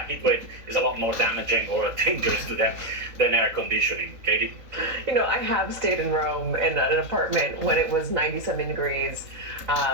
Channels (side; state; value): left; late; 3.9 ms